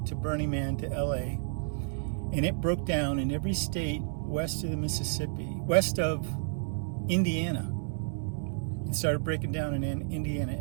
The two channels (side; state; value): left; silent; digital silence